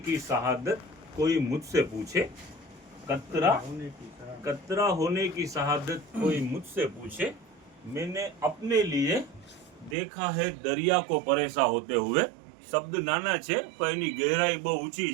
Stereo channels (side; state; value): left; drops out; at 10.0 s